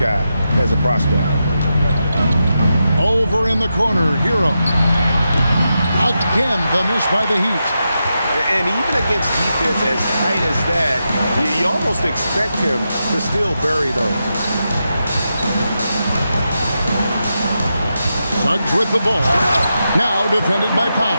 as a prospect. Over in the corner, Hero. Again, the miss by the Heat. And even against defense as tight as that, you almost expect him to still bury those. Suggs with the ball. Now defended by Powell.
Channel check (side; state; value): both; inverted; correlation -0.87